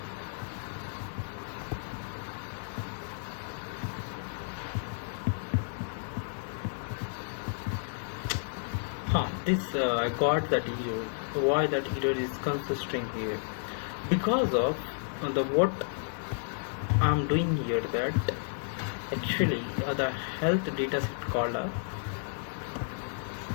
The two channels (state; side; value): silent; right; digital silence